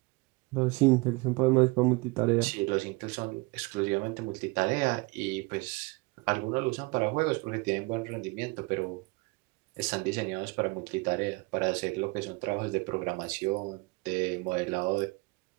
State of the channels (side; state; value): left; quieter; 25.9 dB